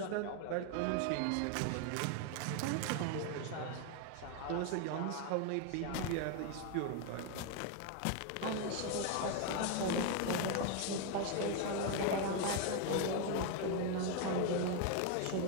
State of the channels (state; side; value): different; both; correlation 0.01